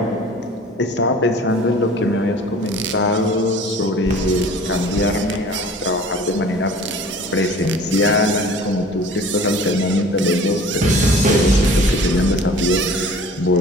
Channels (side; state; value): both; normal; correlation 0.46